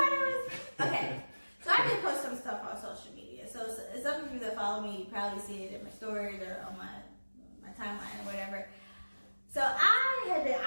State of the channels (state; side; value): inverted; both; correlation -1.00